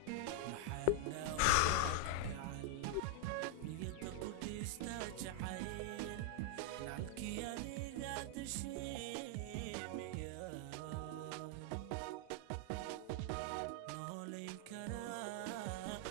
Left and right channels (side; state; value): both; different; correlation 0.00